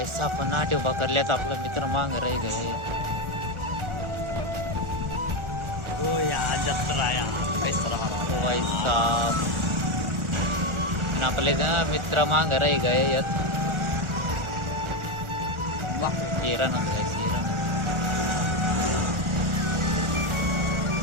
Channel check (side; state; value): left; late; 1.4 ms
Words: आपण नाट्य उभा करल्यात आपला मित्र मांग राही गए ओ यार जत्रा यार भाई साहब आपले मित्र मांग राही गए यात हिरण गाइस हिरण